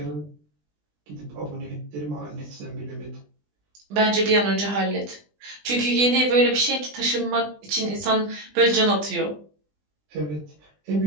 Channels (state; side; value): late; left; 20 ms